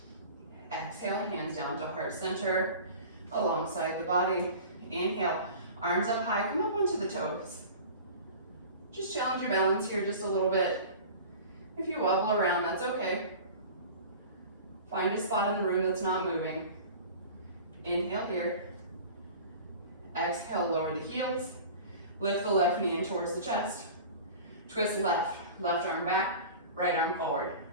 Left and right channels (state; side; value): inverted; both; correlation -0.38